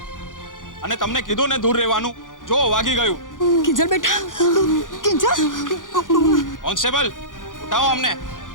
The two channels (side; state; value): right; late; 0.88 ms